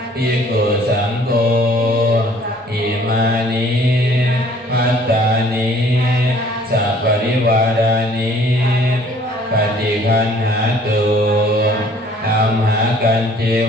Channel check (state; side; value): normal; both; correlation 0.56